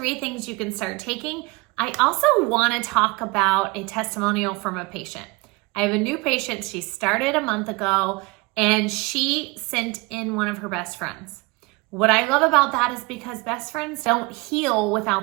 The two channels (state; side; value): quieter; left; 26.0 dB